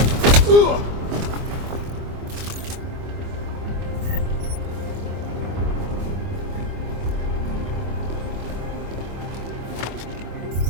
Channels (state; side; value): late; left; 24 ms